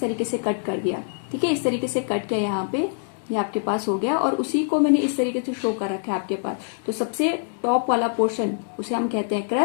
से कट कर दिया, ठीक है। इस तरीके से कट किया यहाँ पे, ये आपके पास हो गया और उसी को मैंने इस तरीके से शो कर रखा है आपके पास। तो सबसे टॉप वाला पोर्शन उसे हम कहते हैं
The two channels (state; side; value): silent; right; 62 dB below the other